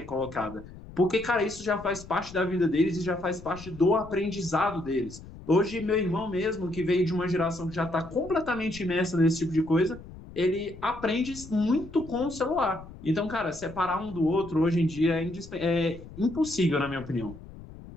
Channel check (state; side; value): noise; left; rumble, 16 dB below the sound